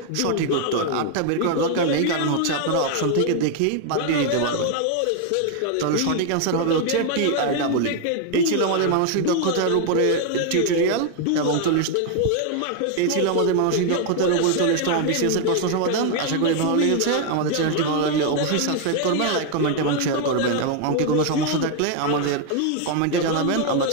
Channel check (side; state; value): both; different; correlation 0.00